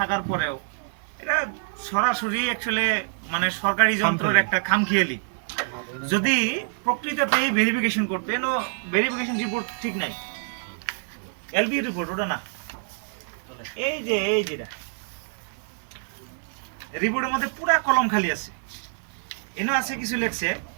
পরেও এটা সরাসরি অ্যাকচুয়ালি মানে সরকারি যন্ত্রের একটা খামখেয়ালি। যদি প্রকৃততেই ভেরিফিকেশন করতে, এনো ভেরিফিকেশন রিপোর্ট ঠিক নাই, এলবি রিপোর্ট ওটা না, এই যেটা রিপোর্টের মধ্যে পুরা কলম খালি আছে, এনো আছে কিছু লেখছে,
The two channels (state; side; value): silent; left; 61 dB below the other